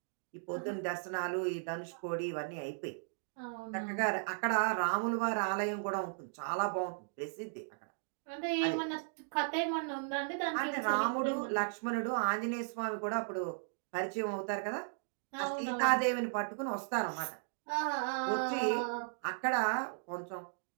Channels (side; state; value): left; silent; digital silence